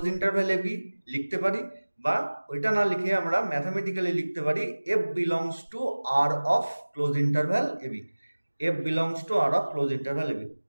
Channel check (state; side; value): inverted; both; correlation -1.00